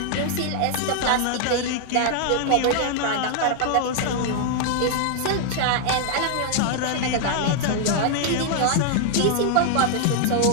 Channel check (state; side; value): different; both; correlation 0.00